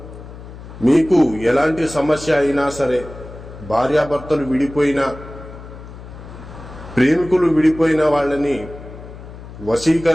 మీకు ఎలాంటి సమస్య అయినా సరే, భార్యాభర్తలు విడిపోయినా, ప్రేమికులు విడిపోయిన వాళ్ళని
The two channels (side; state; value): left; noise; hum, 15 dB below the sound